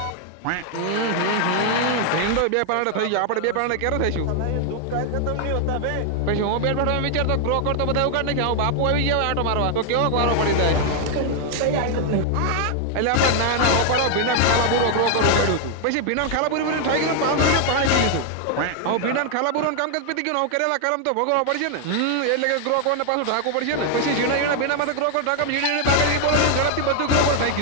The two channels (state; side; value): different; both; correlation 0.00